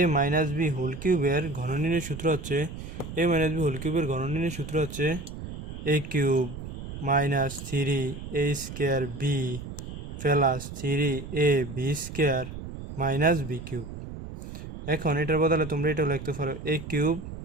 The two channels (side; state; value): right; noise; rumble, 10 dB below the sound